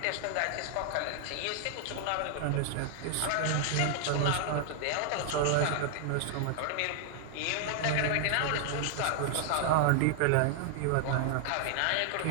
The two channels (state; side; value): different; both; correlation 0.00